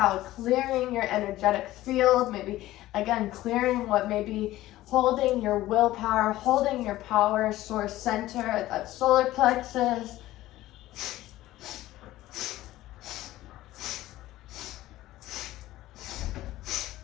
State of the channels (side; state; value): right; quieter; 15.8 dB